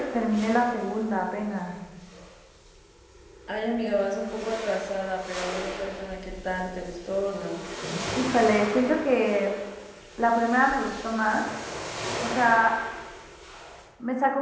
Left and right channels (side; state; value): both; identical; correlation 1.00